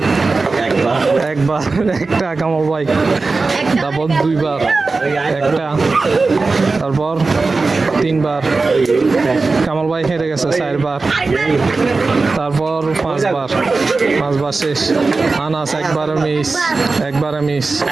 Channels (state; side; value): quieter; left; 3.9 dB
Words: একবার একটা কামল ভাই, তারপর দুইবার একটা, তারপর তিনবার কামাল ভাই হেরে গেছে, চারবার, তারপর পাঁচবার শেষ। আনাস একবারে মিস, দুইবার